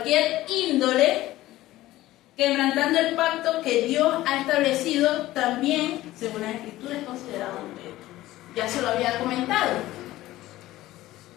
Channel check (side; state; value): right; quieter; 16.2 dB